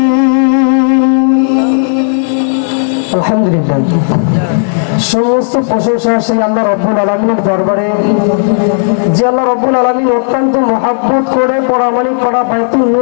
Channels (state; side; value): silent; right; digital silence